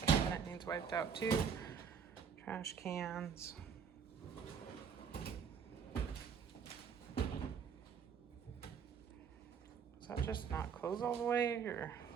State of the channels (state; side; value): quieter; left; 6.9 dB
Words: wiped out too. Trash cans. Does that just not close all the way, or?